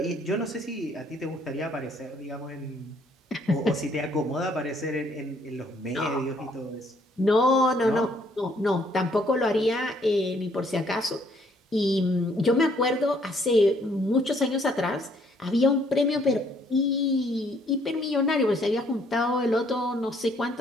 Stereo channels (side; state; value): both; normal; correlation 0.65